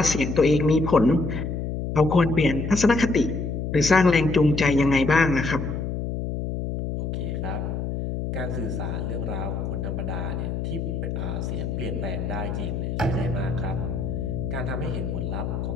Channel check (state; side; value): noise; left; hum, 3 dB below the sound